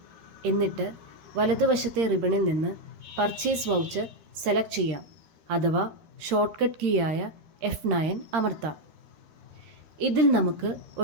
എന്നിട്ട് വലതുവശത്തെ റിബണിൽ നിന്ന് പർച്ചേസ് വൗച്ചർ സെലക്ട് ചെയ്യാം, അഥവാ ഷോർട്ട് കട്ട് കീ ആയ F9 അമർത്താം. ഇതിൽ നമുക്ക്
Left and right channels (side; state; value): left; late; 13 ms